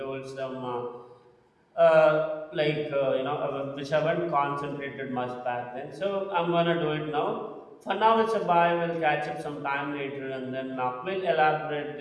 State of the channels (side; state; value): both; identical; correlation 1.00